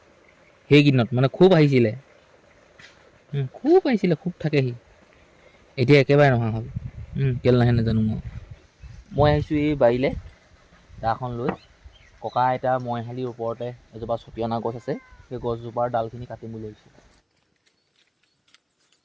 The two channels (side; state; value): both; identical; correlation 1.00